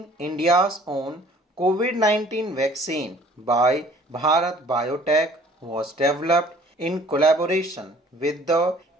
India's own COVID-19 vaccine by Bharat Biotech, was developed in collaboration with the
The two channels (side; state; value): both; normal; correlation 0.53